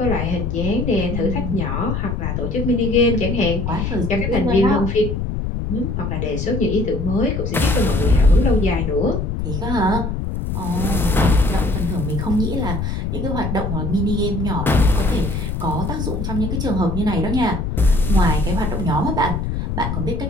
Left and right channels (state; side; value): noise; left; rumble, 3 dB below the sound